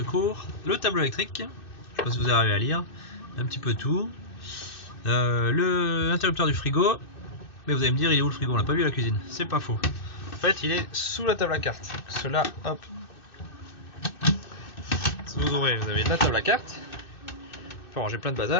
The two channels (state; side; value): late; right; 2.6 ms